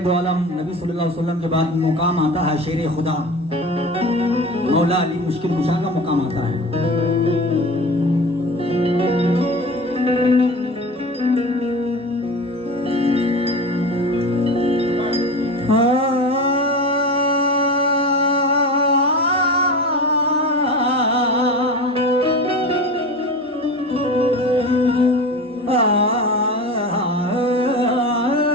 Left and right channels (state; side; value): normal; both; correlation 0.31